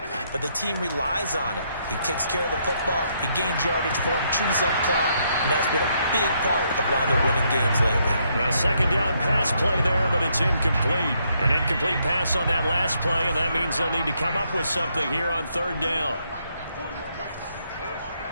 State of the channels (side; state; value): both; inverted; correlation -0.74